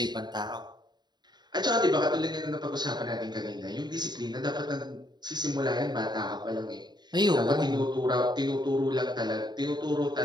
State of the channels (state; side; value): late; left; 0.21 ms